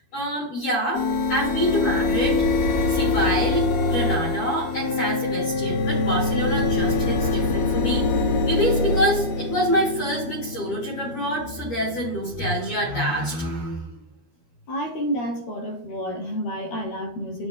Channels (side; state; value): right; late; 12 ms